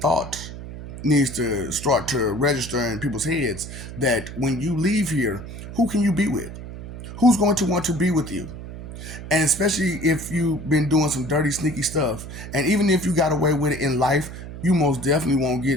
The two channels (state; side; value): noise; right; hum, 11 dB below the sound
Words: needs to start to register in people's heads that when you leave here, who can you be with? Who's going to want to be with you? And especially if you've been doing some dirty, sneaky stuff. And even if you got away with it in life, you most definitely won't